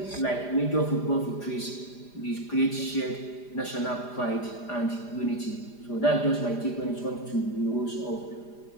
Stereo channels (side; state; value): right; late; 4.9 ms